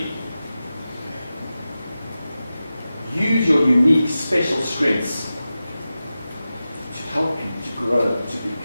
Use your unique, special strengths to help you to grow, to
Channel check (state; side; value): inverted; both; correlation -0.94